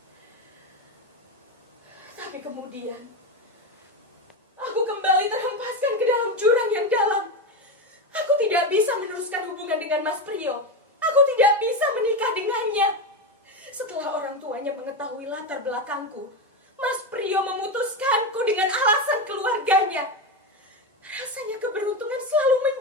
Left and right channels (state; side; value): normal; both; correlation 0.15